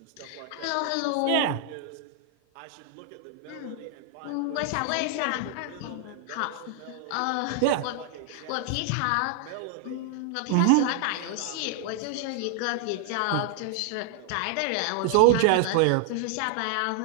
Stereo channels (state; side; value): different; both; correlation 0.00